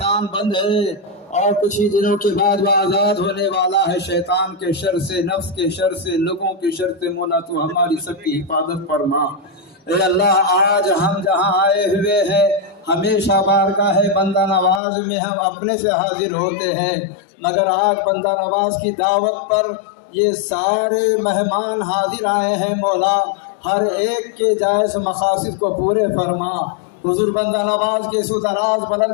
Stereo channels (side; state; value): right; drops out; at 14.8 s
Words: बंद है और कुछ ही दिनों के बाद वह आज़ाद होने वाला है शैतान के शर से, नफ्स के शर से, लोगों के शर से। मौला तो हमारी सबकी हिफाजत फरमा। ए अल्लाह, आज हम जहाँ आए हुए हैं हमेशा बारगाह है बंदा नवाज में हम अपने से हाजिर होते हैं, मगर आज बंदा नवाज की दावत पर ये सारे मेहमान हाजिर आए हैं मौला। हर एक के जायज़ मकासद को पूरे फरमा। हुजूर बंदा नवाज के सुदराज बुलंद